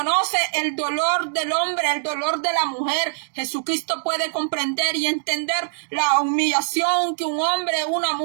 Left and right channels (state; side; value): silent; left; digital silence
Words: el dolor del hombre, el dolor de la mujer. Jesucristo puede comprender y entender la humillación que un hombre o una